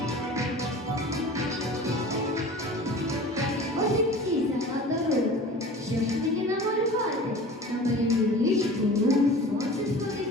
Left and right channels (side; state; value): both; normal; correlation 0.39